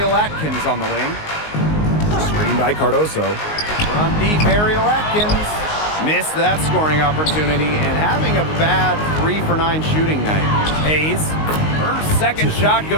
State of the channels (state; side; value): late; right; 19 ms